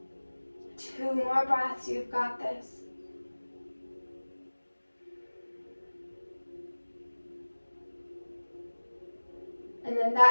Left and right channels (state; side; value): inverted; both; correlation -1.00